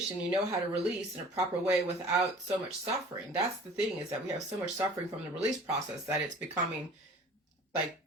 you know how to release in a proper way without so much suffering. That's the thing, is that we have so much suffering from the release process that it's becoming like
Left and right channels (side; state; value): both; normal; correlation 0.46